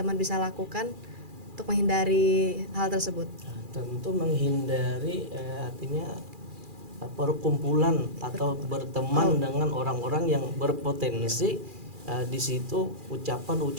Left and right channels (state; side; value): late; left; 2.4 ms